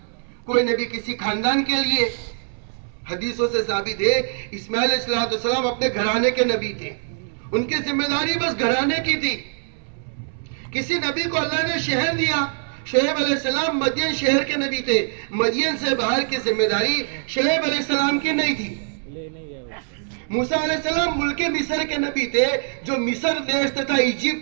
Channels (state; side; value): silent; left; 63 dB below the other